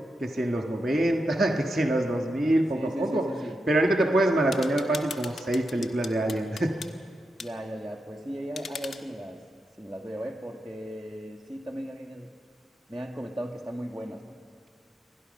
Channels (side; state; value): both; normal; correlation 0.87